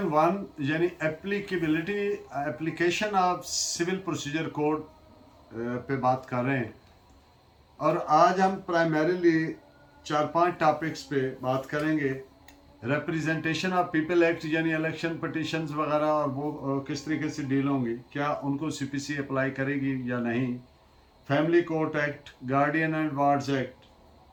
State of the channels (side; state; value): both; identical; correlation 1.00